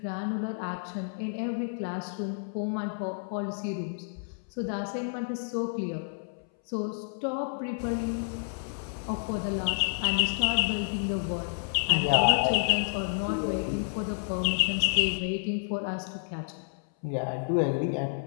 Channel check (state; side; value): silent; right; 58 dB below the other